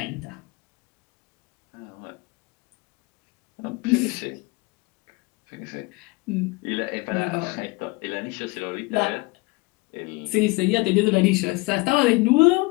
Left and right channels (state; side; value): quieter; right; 24.8 dB